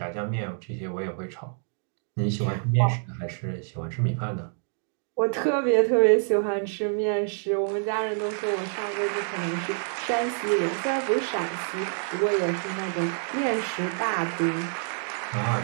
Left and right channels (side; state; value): left; silent; 56 dB below the other